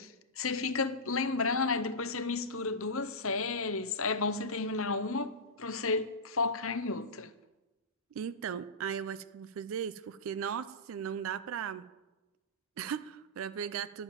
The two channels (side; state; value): both; normal; correlation -0.16